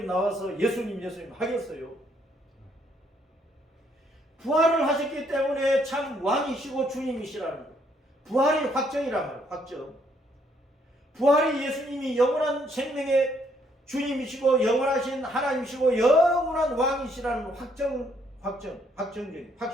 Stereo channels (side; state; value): both; normal; correlation 0.69